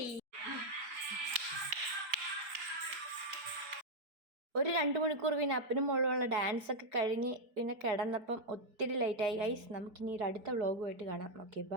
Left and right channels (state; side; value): late; left; 4.7 ms